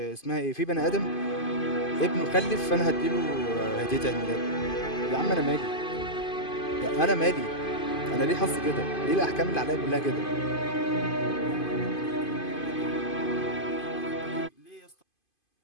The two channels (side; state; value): right; late; 2.5 ms